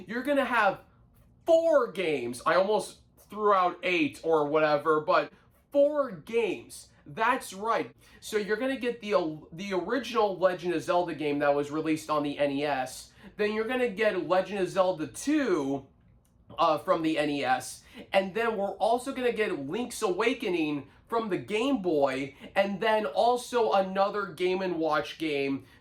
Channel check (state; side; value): identical; both; correlation 1.00